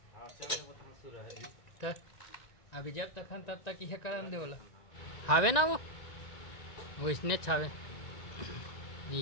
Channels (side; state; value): right; late; 1.9 ms